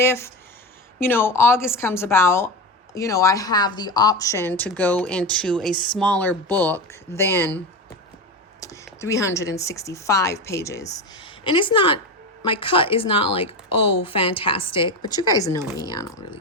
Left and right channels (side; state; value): both; normal; correlation 0.20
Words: August comes about, I have the option to go into a smaller book than 365 pages. And it's not, my cut is not like, oh, fantastic. But you guys know me. I don't really